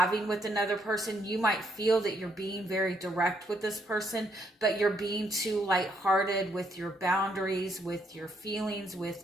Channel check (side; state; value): both; normal; correlation 0.73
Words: with another person. You might feel that you're being very direct with this person, but you're being too lighthearted with your boundaries, with your feelings,